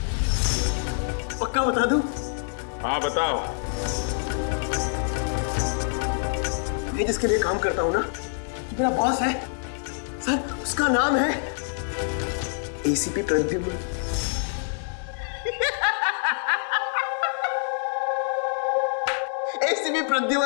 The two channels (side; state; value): right; silent; digital silence